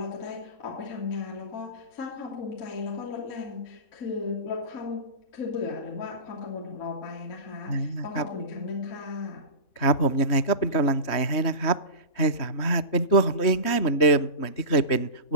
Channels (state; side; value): late; right; 3.2 ms